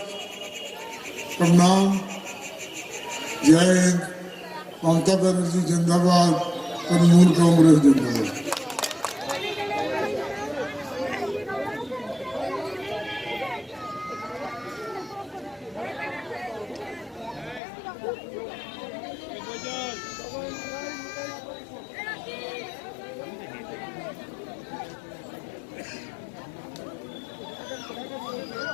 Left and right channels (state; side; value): drops out; right; at 17.6 s